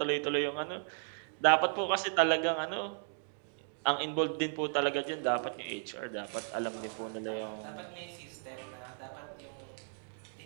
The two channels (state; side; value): silent; left; 54 dB below the other